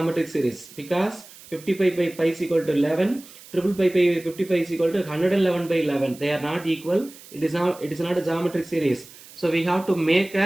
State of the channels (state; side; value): noise; right; hiss, 20 dB below the sound